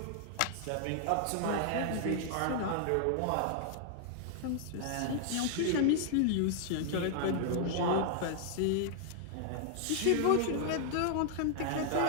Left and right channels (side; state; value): both; different; correlation -0.01